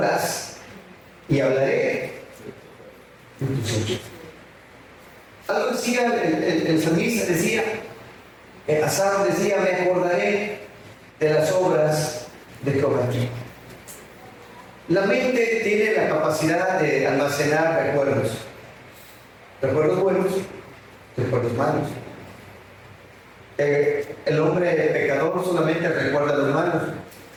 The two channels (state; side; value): identical; both; correlation 1.00